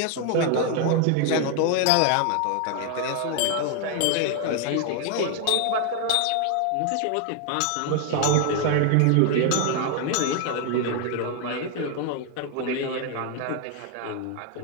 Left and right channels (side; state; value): both; different; correlation 0.00